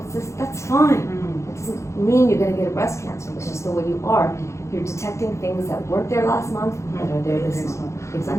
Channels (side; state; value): right; late; 0.14 ms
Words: cysts, that's fine. It doesn't mean you're going to get a breast cancer, it's just the way you are. You're detecting things that weren't there last month that are there this month. Exactly.